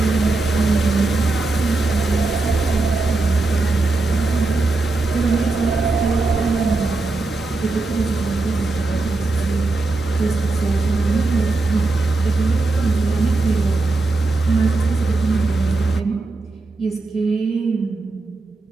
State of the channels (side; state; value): left; quieter; 3.4 dB